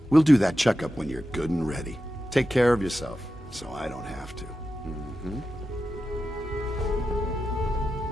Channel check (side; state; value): both; normal; correlation 0.91